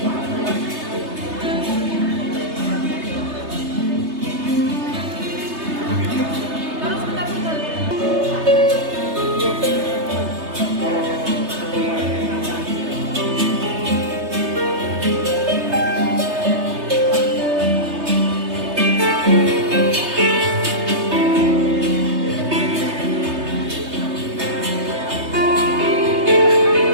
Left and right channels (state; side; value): late; left; 3.3 ms